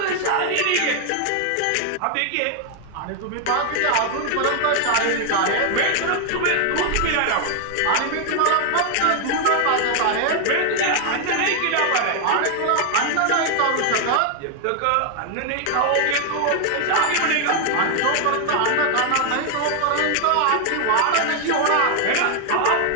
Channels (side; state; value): both; different; correlation 0.00